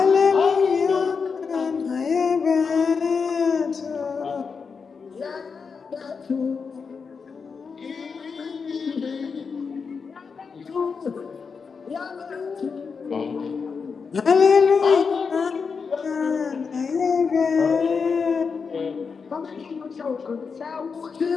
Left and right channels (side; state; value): right; quieter; 5.4 dB